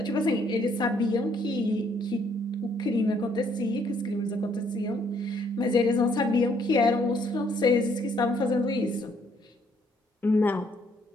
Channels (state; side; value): normal; both; correlation 0.67